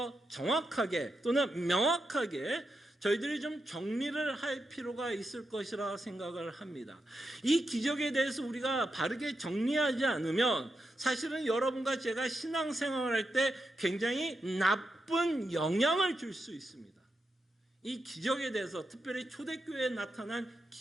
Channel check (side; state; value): both; normal; correlation 0.86